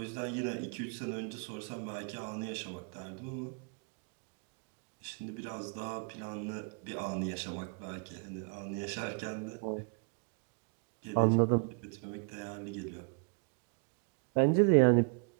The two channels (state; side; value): quieter; left; 38.8 dB